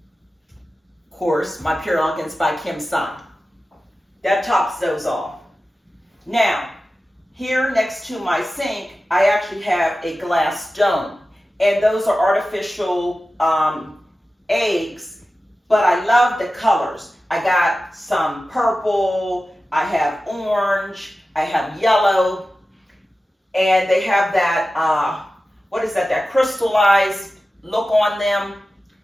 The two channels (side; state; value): both; normal; correlation 0.94